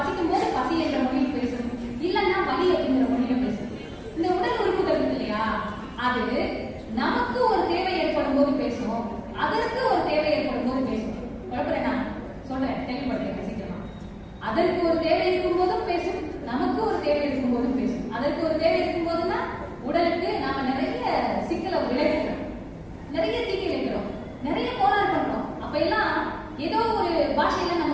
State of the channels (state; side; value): identical; both; correlation 1.00